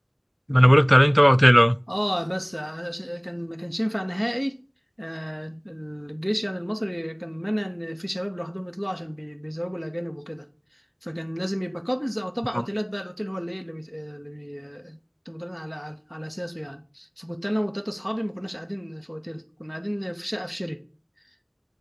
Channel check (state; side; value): identical; both; correlation 1.00